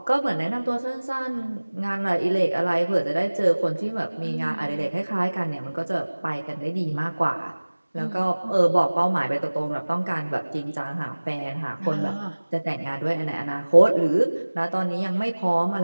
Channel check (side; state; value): both; inverted; correlation -1.00